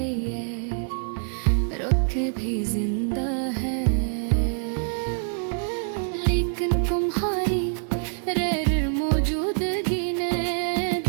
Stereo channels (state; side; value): silent; left; 60 dB below the other